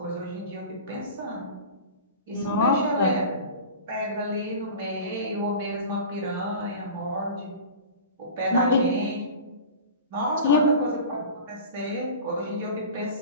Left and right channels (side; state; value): both; inverted; correlation -0.35